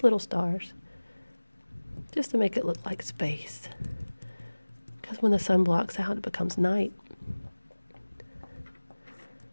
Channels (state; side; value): inverted; both; correlation -1.00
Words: little stars. Just to make it look like space. Because when the sun blocks out, it becomes night.